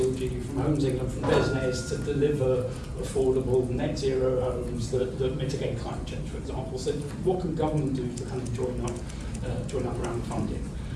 from Homes England, from Desnes to deliver affordable net zero homes that mitigate climate change, for example. So what can government do to kind of join up around funding?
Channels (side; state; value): both; identical; correlation 1.00